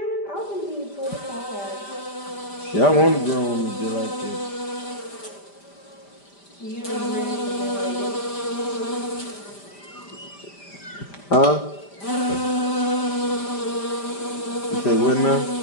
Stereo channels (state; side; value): late; right; 5.0 ms